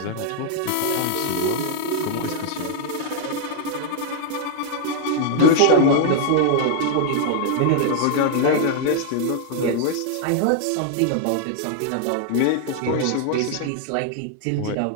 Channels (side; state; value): both; different; correlation 0.00